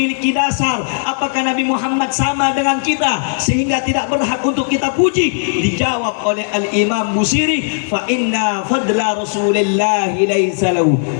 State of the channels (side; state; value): right; silent; digital silence